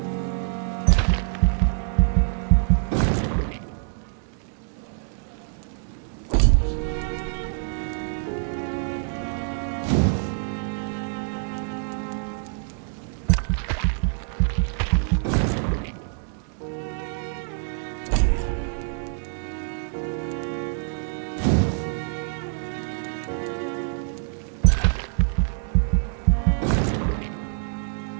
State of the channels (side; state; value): left; silent; 62 dB below the other